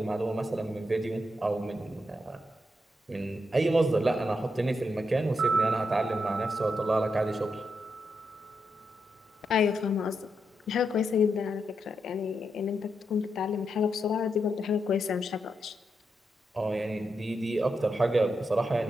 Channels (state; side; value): normal; both; correlation 0.84